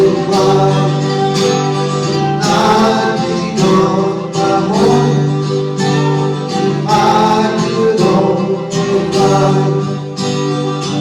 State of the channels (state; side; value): identical; both; correlation 1.00